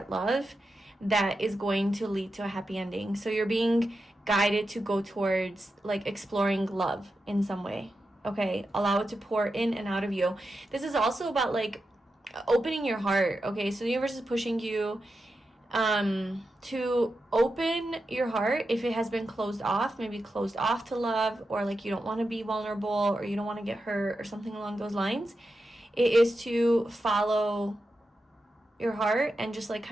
love that is going to lead to a happy ending. So you're being guided to go towards like exploring love in some way. Okay, allow it to pour in and out of you. This is also about like opening your heart. Okay, so the universe is pushing you to open your heart if it has been closed off, maybe closed off to love, or like you don't want to be vulnerable or you don't want to get hurt or something along those lines. It is to follow your heart and just like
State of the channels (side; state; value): both; normal; correlation 0.89